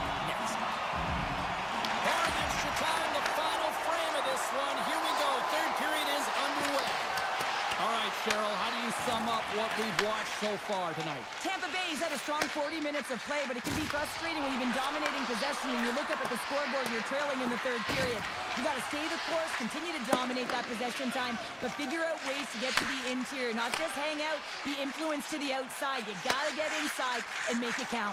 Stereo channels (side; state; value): both; identical; correlation 1.00